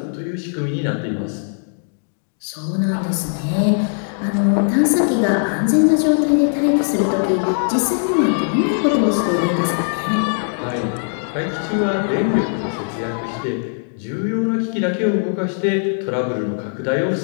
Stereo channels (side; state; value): right; silent; digital silence